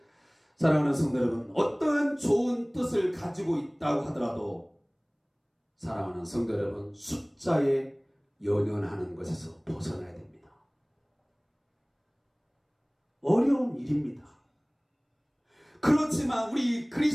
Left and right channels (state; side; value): identical; both; correlation 1.00